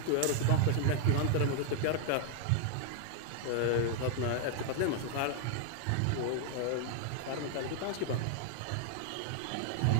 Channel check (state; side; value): different; both; correlation 0.00